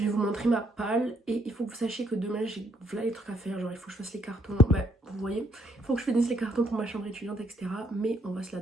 vais vous montrer ma palle et il faut que vous sachiez que demain j'ai voilà les trucs à faire. Genre il faut que je fasse les cartons, bah, vous voyez, il faut que je finisse les cartons pour ma chambre étudiante, etc. Mais on va se la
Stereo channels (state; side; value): normal; both; correlation 0.70